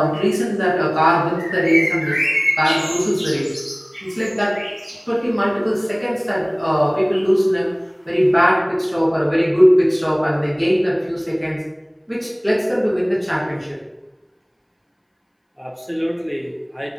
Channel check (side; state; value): both; identical; correlation 1.00